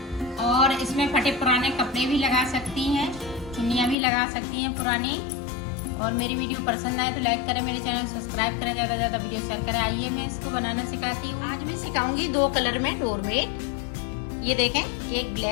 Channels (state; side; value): drops out; right; at 4.0 s